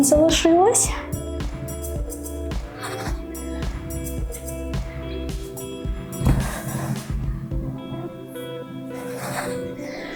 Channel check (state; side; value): identical; both; correlation 1.00